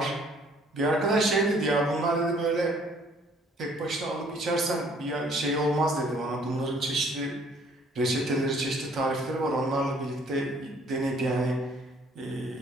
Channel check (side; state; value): both; normal; correlation 0.60